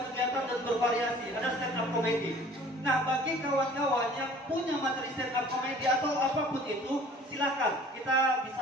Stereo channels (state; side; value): normal; both; correlation 0.50